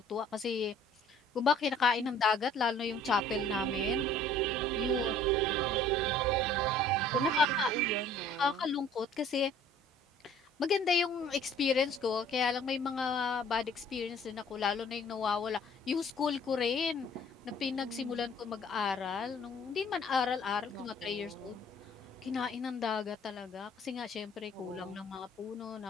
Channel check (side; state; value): both; normal; correlation 0.54